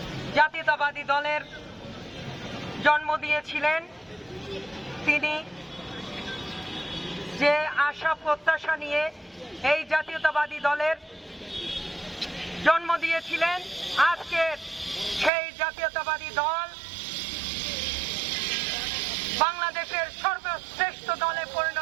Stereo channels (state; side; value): drops out; left; at 15.3 s